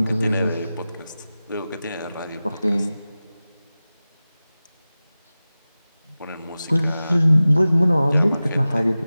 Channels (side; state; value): both; inverted; correlation -0.96